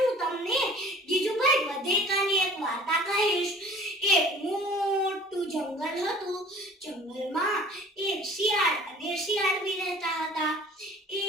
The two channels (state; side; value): normal; both; correlation 0.48